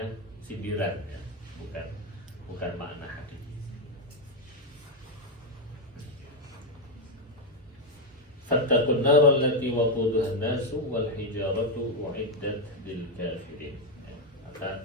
sindiran, ya, bukan makna hakiki. Fattaqun nar allati waquduha an-nasu wal hijaratu uiddat lil kafirin. Maka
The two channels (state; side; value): normal; both; correlation 0.04